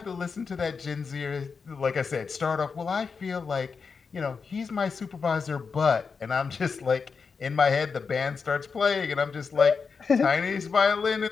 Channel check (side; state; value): right; quieter; 5.3 dB